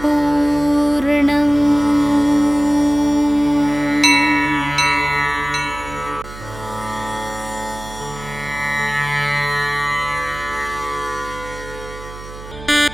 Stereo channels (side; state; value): right; noise; hum, 14 dB below the sound